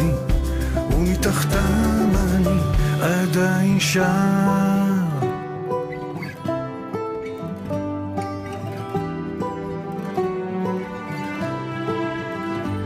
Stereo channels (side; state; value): both; identical; correlation 1.00